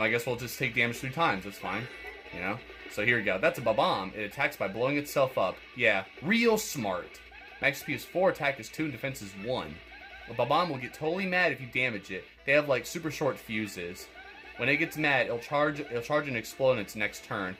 guess we'll just take damage 3 times. That's fine. So here we go. That's a Bob-Omb. It attacks by blowing itself up. Yeah, real smart. Max SP is 4, attack is 2, and defense is 1. A Bob-Omb will get totally mad if you damage it. They have like super short fuses. When it gets mad, it'll charge and explode in its next turn.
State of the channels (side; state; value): both; identical; correlation 1.00